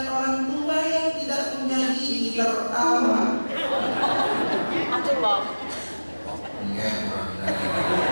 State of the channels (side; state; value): both; inverted; correlation -1.00